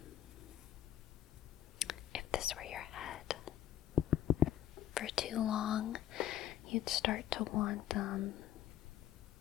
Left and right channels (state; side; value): quieter; right; 11.9 dB